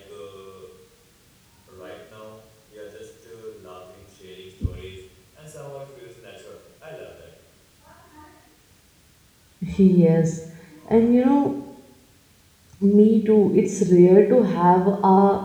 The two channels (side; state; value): both; identical; correlation 1.00